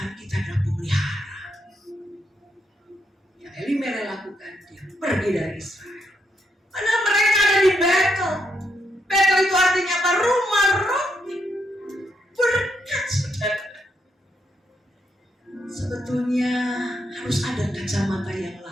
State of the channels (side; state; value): both; normal; correlation 0.78